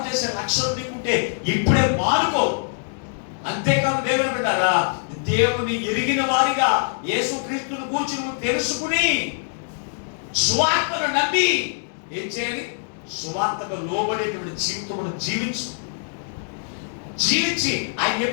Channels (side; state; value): right; silent; digital silence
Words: చేసే లక్ష్యం నీకుంటే ఇప్పుడే మానుకో. అంతేకాదు దేవుని బిడ్డలారా, దేవుని ఎరిగిన వారిగా యేసుక్రీస్తును గూర్చి నువ్వు తెలుసుకుని సువార్తను నమ్మి ఏం చేయాలి? సువార్తకు లోబడేటువంటి జీవితమును జీవించి ఆయన